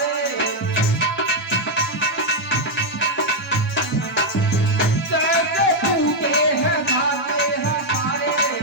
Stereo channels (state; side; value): normal; both; correlation 0.01